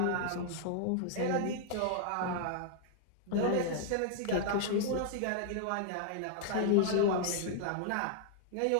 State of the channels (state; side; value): different; both; correlation -0.01